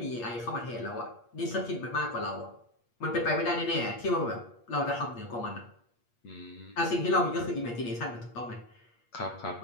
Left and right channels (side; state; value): right; late; 8.5 ms